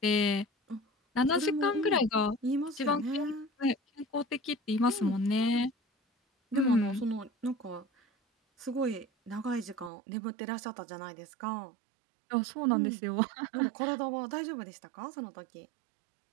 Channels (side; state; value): left; drops out; at 9.9 s